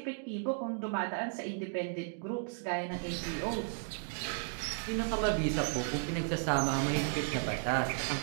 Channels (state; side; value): silent; left; 55 dB below the other